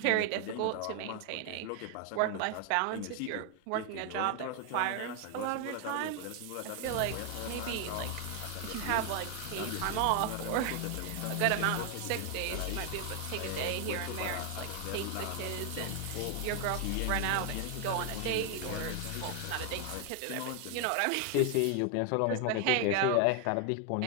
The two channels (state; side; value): different; both; correlation 0.00